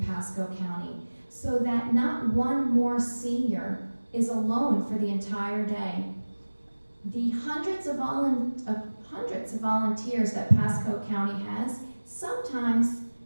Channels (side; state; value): both; inverted; correlation -1.00